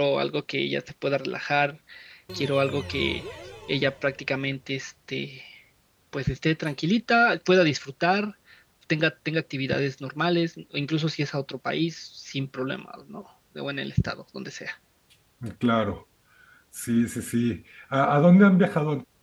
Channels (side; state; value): both; identical; correlation 1.00